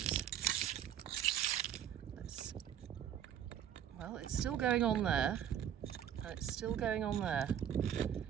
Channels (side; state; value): left; quieter; 9.7 dB